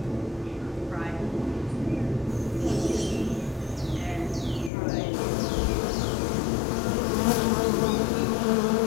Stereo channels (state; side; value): drops out; right; at 4.7 s